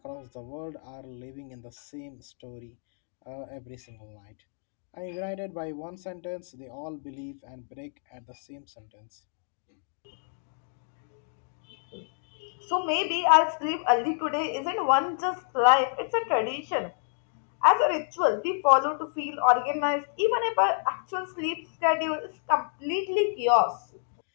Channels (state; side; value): silent; right; digital silence